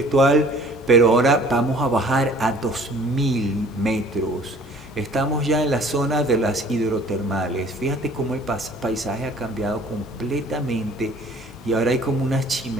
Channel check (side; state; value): both; normal; correlation 0.52